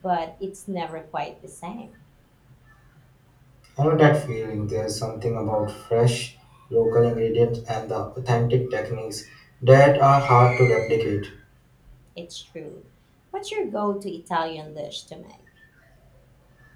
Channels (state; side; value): identical; both; correlation 1.00